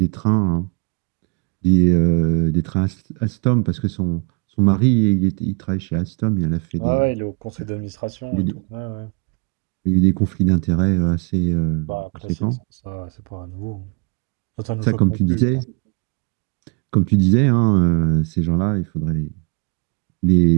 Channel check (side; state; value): left; quieter; 33.0 dB